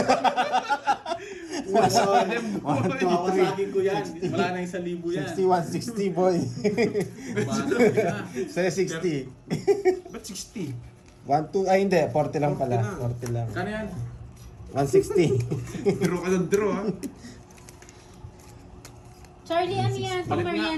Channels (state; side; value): identical; both; correlation 1.00